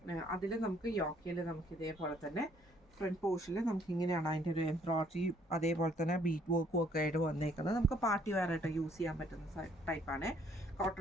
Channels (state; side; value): normal; both; correlation 0.64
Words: അതിൽ നമുക്ക് യോക്കയിൽ നമുക്ക് ഇതേപോലെ തന്നെ ഫ്രണ്ട് പോർഷനിൽ നമുക്ക് ഇങ്ങനെയാണ് അതിൻ്റെ ഒരു എംബ്രോയിഡറി അതേപോലെ തന്നെ ബീറ്റ് വർക്കും ഒക്കെ ആയിട്ട് വന്നേക്കുന്നത്. നമുക്ക് പാർട്ടി വെയർ ആയിട്ട് യൂസ് ചെയ്യാൻ പറ്റുന്ന ടൈപ്പാണ്.